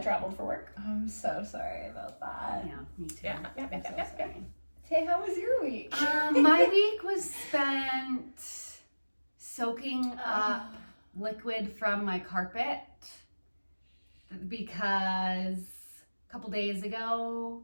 traveled for work. I'm so sorry about that. Yeah, me too. Yeah. I'm so sorry. Hey, how was your week? My week was spent soaking up liquid from my carpet because a couple days ago,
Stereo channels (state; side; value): inverted; both; correlation -1.00